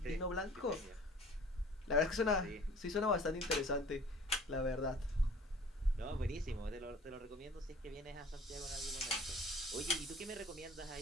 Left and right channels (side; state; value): both; normal; correlation 0.49